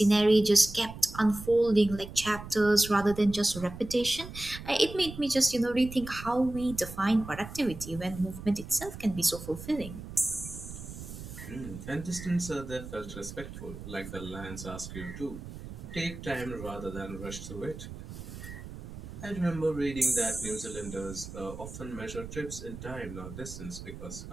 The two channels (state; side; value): noise; right; rumble, 12 dB below the sound